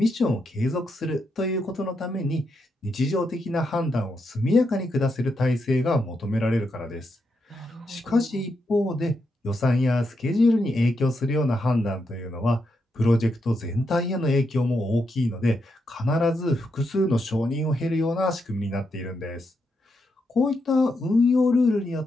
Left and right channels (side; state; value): both; normal; correlation 0.82